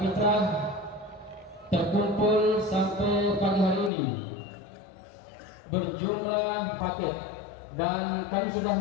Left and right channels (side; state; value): right; drops out; at 3.9 s